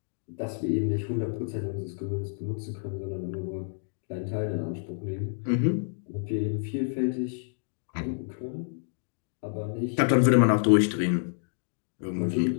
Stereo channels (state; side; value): silent; right; digital silence